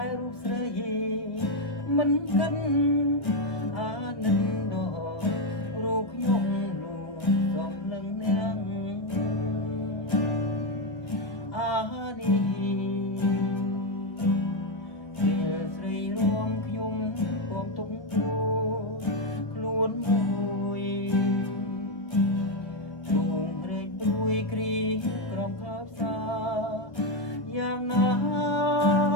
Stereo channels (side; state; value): right; late; 1.7 ms